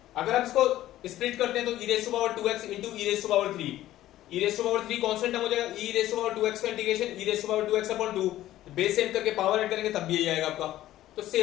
अगर आप इसको स्प्लिट करते हैं तो e raise to power 2x into e raise to power 3, e raise to power 3 constant term हो जाएगा, e raise to power 2x का integration e raise to power 2x upon 2, base same करके power add करेंगे तब भी यही आएगा आपका, तो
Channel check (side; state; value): right; quieter; 14.2 dB